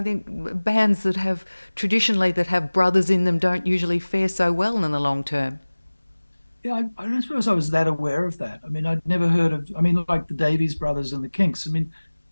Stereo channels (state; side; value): inverted; both; correlation -1.00